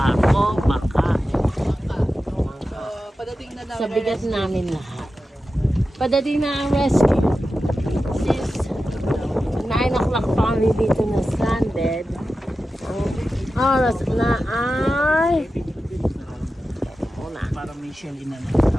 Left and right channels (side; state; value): both; normal; correlation 0.93